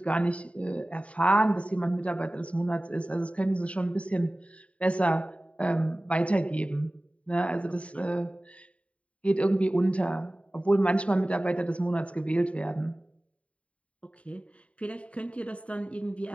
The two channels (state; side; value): late; right; 0.064 ms